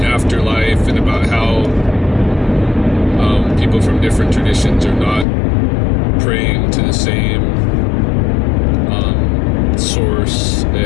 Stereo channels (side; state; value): right; drops out; at 5.2 s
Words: afterlife and about how people from different traditions are not praying to the same source,